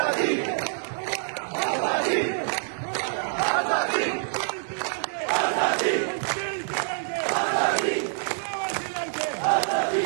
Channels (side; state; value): left; silent; digital silence